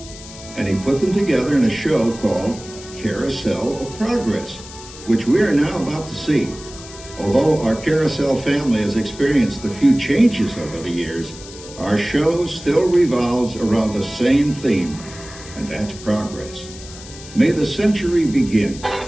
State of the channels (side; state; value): left; noise; hiss, 16 dB below the sound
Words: And he put them together in a show called Carousel of Progress, which we are now about to see. Although our Carousel family has experienced a few changes over the years, our show still revolves around the same theme, and that's progress. May the century begin.